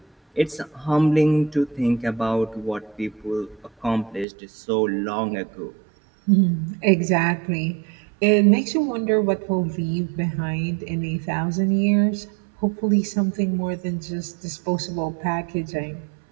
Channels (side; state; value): left; drops out; at 4.2 s